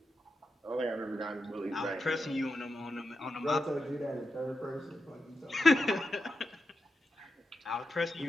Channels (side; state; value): both; normal; correlation 0.88